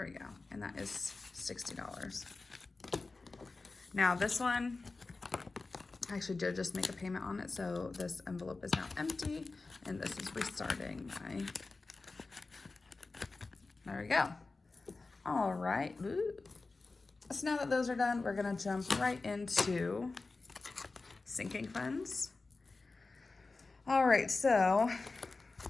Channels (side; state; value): right; quieter; 3.7 dB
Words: we go. And that is $60. Now this one, I actually did just make a payment on it, so this envelope is now empty, and this is restarting my, there we go. All right. Ooh. So now that those are done, we're gonna jump right into sinking funds. All right, so